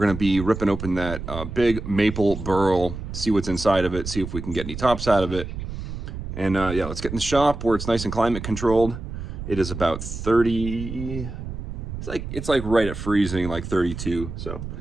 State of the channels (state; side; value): noise; right; rumble, 8 dB below the sound